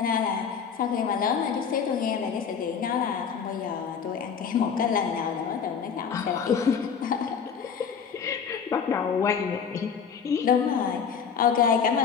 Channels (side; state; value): right; quieter; 6.8 dB